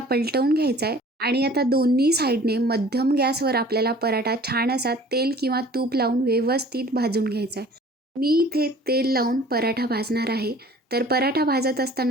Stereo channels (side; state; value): both; normal; correlation 0.49